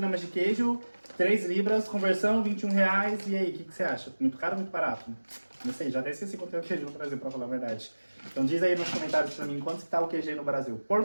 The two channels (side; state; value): both; inverted; correlation -1.00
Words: de queijo, 3 libras, conversão, 21 reais. E aí, o que você acha? Muito caro ou muito barato? Não sei, já até esqueci quanto é o queijo no Brasil, pra falar a verdade. Então diz aí nos comentários pra mim quanto que tá o queijo aí no Brasil. Por